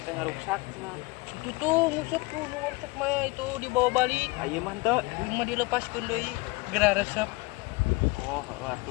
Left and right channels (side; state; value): right; quieter; 24.6 dB